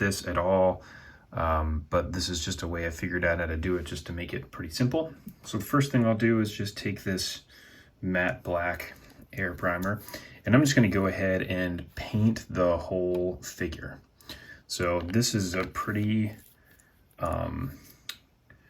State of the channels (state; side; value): identical; both; correlation 1.00